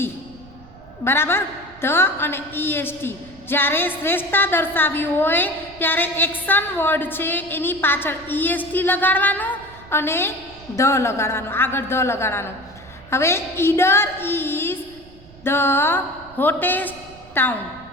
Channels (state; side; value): noise; right; rumble, 22 dB below the sound